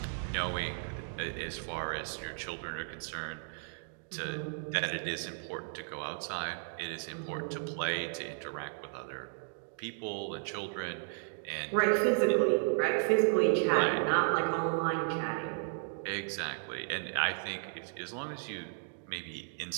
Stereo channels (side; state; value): left; silent; digital silence